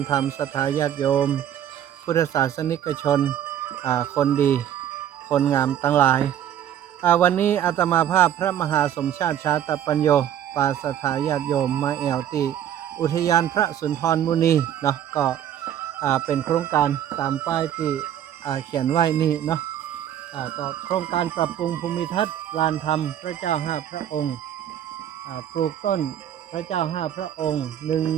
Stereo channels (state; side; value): quieter; left; 10.4 dB